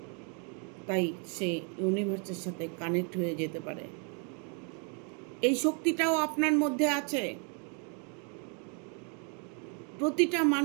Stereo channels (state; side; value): quieter; left; 39.4 dB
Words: তাই সে ইউনিভার্সের সাথে কানেক্ট হয়ে যেতে পারে। এই শক্তিটাও আপনার মধ্যে আছে। প্রতিটা